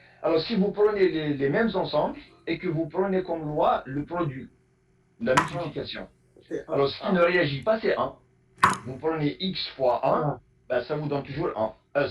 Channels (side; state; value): both; identical; correlation 1.00